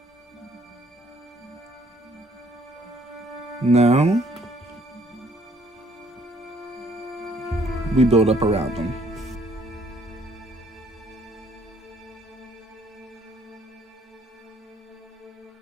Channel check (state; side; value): normal; both; correlation 0.63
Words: Now, we build up around them.